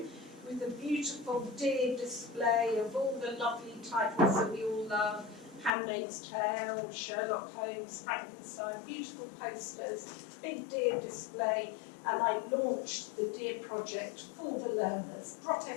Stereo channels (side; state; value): right; drops out; at 5.7 s